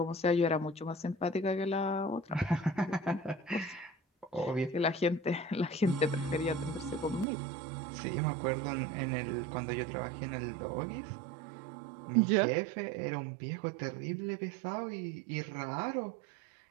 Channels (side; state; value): left; drops out; at 7.2 s